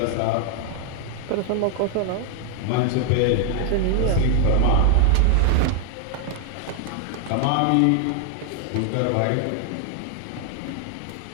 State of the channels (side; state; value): both; different; correlation 0.00